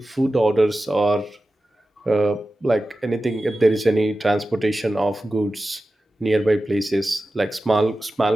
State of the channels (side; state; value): both; normal; correlation 0.94